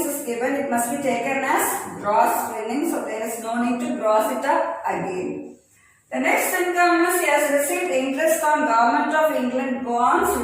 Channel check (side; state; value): both; identical; correlation 1.00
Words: is given, it must be taken as gross winnings, so there is no need to gross it up again. The next income is he has received interest on Government of England bonds